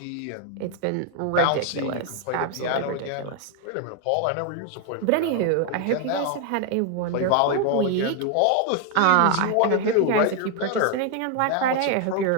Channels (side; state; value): both; different; correlation 0.01